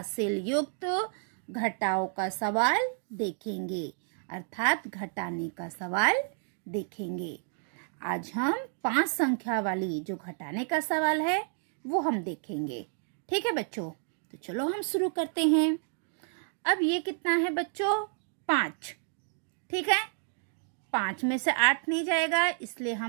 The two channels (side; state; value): left; silent; 57 dB below the other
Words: युक्त घटाओं का सवाल देखेंगे, अर्थात घटाने का सवाल देखेंगे। आज हम 5 संख्या वाली जो घटाने का सवाल है वो हम देखेंगे। ठीक है बच्चों, तो चलो हम शुरू करते हैं। अब ये कितना है बच्चों? 5। ठीक है, 5 में से 8 नहीं जाएगा, इसलिए